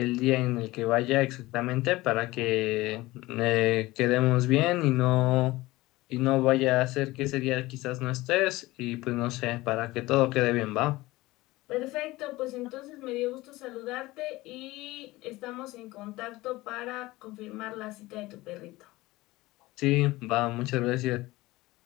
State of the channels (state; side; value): quieter; right; 19.4 dB